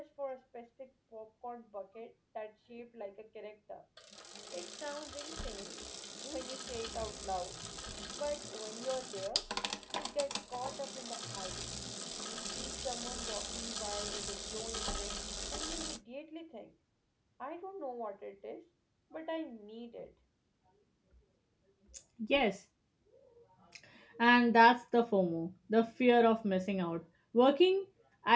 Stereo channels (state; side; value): identical; both; correlation 1.00